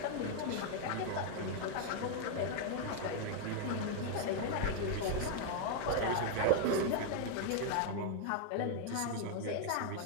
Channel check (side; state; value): both; different; correlation 0.00